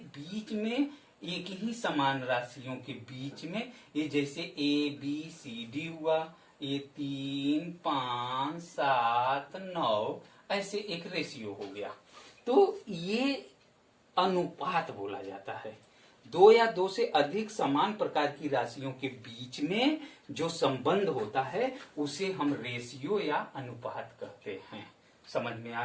में एक ही समान राशियों के बीच में ये जैसे ए बी सी डी हुआ, ये 3, 5, 7, 9 ऐसे एक रेशियो हो गया, तो ये अनुपात बोला जाता है। दो या दो से अधिक समान प्रकार की राशियों के बीच में जो संबंध होता है उसे हम रेशियो या अनुपात कहते हैं। समझ में आ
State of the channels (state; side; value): identical; both; correlation 1.00